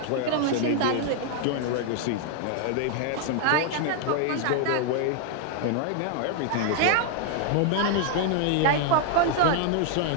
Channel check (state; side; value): different; both; correlation 0.00